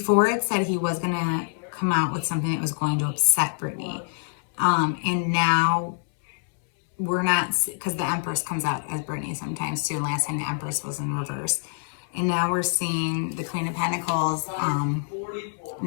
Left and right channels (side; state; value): right; silent; 61 dB below the other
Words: it said he was going to come out with something that was going to upset Britney. And now we're not, because the Empress comes out as Britney sometimes too. And last time the Empress was in reverse. And now we're seeing the Queen of Pentacles,